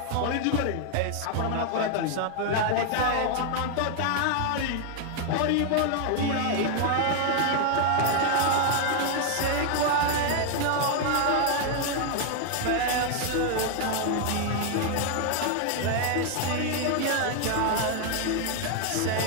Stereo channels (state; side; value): different; both; correlation 0.00